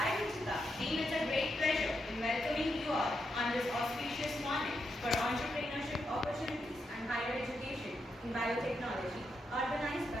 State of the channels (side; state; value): both; normal; correlation 0.83